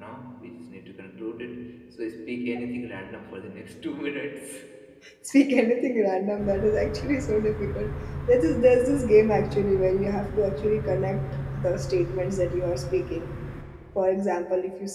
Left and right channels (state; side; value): identical; both; correlation 1.00